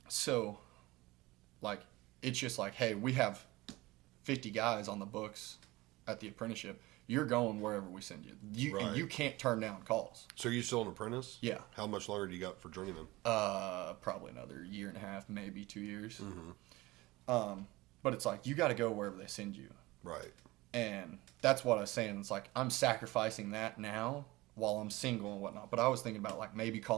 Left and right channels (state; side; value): quieter; left; 20.3 dB